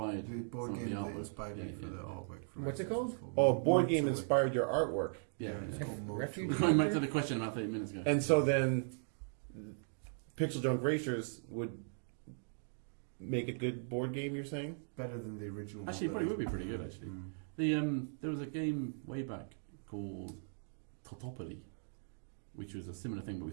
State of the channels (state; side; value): silent; left; digital silence